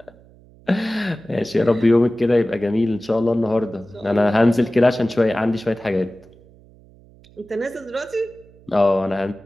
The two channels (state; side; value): noise; right; hum, 26 dB below the sound